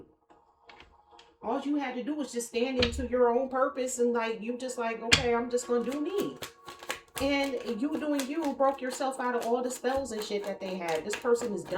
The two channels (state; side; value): identical; both; correlation 1.00